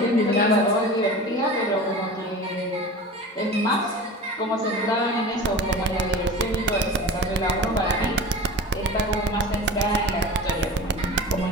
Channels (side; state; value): both; normal; correlation 0.34